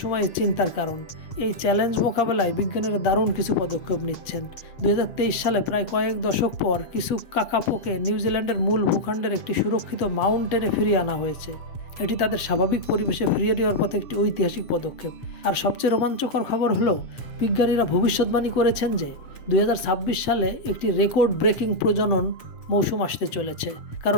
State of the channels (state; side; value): late; right; 7.7 ms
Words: চিন্তার কারণ। এই চ্যালেঞ্জ মোকাবেলায় বিজ্ঞানীরা দারুণ কিছু পদক্ষেপ নিচ্ছেন। 2023 সালে প্রায় কয়েক দশক পর কিছু কাকাপোকে নিউজিল্যান্ডের মূল ভূখণ্ডের একটি সুরক্ষিত মাউন্টেনে ফিরিয়ে আনা হয়েছে। এটি তাদের স্বাভাবিক পরিবেশে ফিরিয়ে দেওয়ার পথে একটি ঐতিহাসিক পদক্ষেপ। আর সবচেয়ে রোমাঞ্চকর খবর হলো, বিজ্ঞানীরা ভবিষ্যৎবাণী করেছেন যে 2026 সালে একটি রেকর্ড ব্রেকিং প্রজনন মৌসুম আসতে চলেছে,